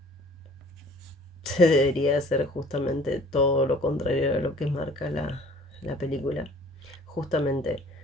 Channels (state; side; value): normal; both; correlation 0.52